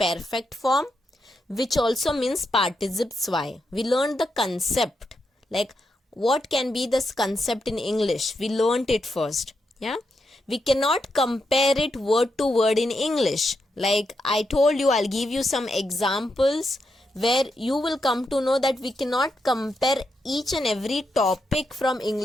form, which also means participes y. We learned the concept, like what can be this concept in English. We learnt it first. Yeah. We cannot compare it word to word in English. Like I told you, I'll give you some examples where you will come to know that we cannot compare each and every topic from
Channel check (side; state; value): both; normal; correlation 0.83